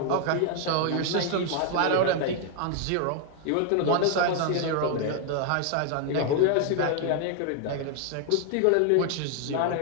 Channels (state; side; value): different; both; correlation 0.00